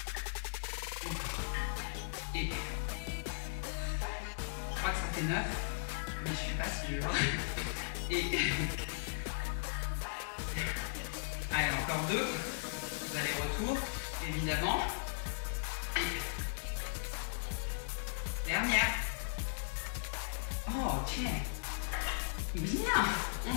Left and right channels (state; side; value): silent; right; digital silence